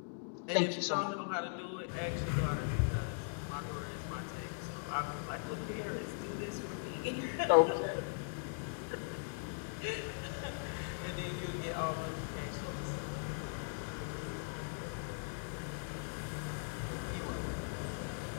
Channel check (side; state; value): right; silent; digital silence